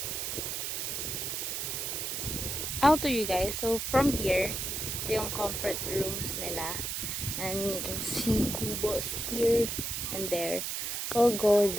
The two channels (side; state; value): right; noise; hiss, 2 dB below the sound